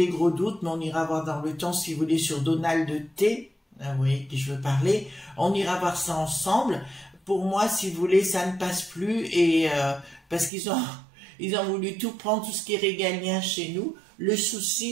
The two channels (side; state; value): left; drops out; at 10.5 s